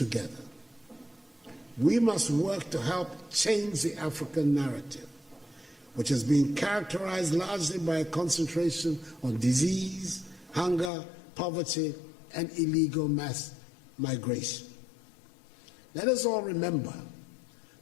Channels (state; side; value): drops out; right; at 10.9 s